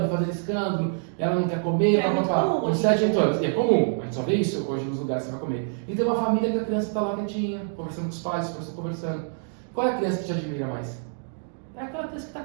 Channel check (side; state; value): left; silent; digital silence